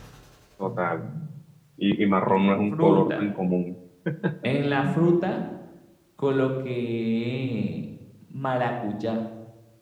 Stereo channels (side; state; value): both; identical; correlation 1.00